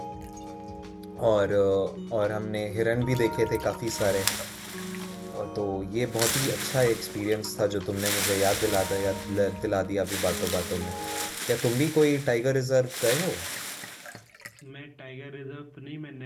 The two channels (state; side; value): identical; both; correlation 1.00